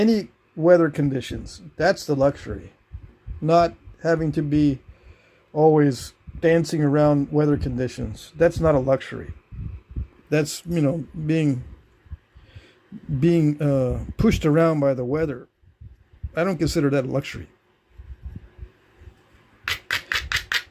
weather conditions. That's the luxury. Not having to be always dancing around weather conditions. That's not a luxury. That's, you know, being pushed around by the weather. I don't consider that a luxury.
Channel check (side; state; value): both; identical; correlation 1.00